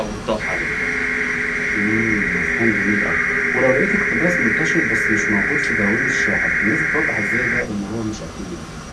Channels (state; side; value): identical; both; correlation 1.00